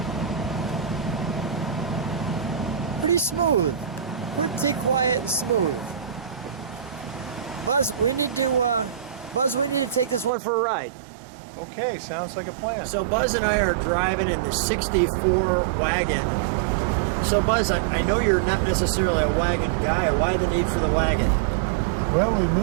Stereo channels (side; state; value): left; drops out; at 10.3 s